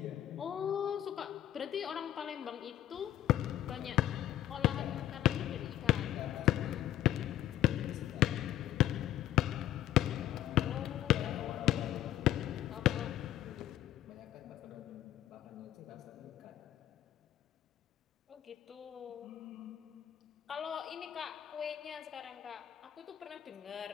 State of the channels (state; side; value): quieter; right; 12.7 dB